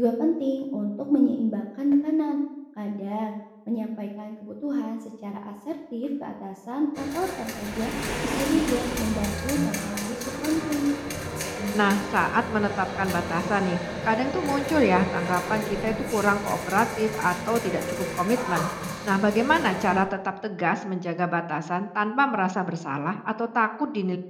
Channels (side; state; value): both; identical; correlation 1.00